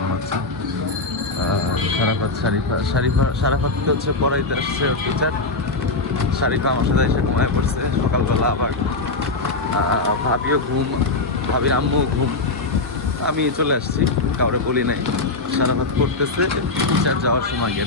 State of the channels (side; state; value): right; quieter; 3.4 dB